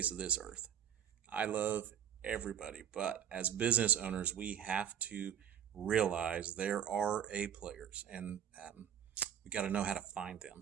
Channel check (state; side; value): quieter; left; 9.3 dB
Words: of this earth. I love everybody, but as business owners, we have to realize there are A players, and we got to know how to find